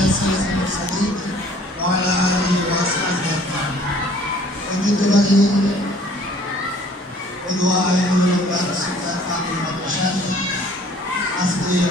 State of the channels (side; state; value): both; normal; correlation 0.55